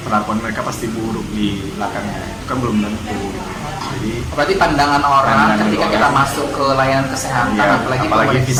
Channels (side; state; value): both; identical; correlation 1.00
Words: perlakuan mereka pasti buruk di belakangnya. Itu kan belum tentu. Jadi berarti pandangan orang ketika kita masuk ke layanan kesehatan, apalagi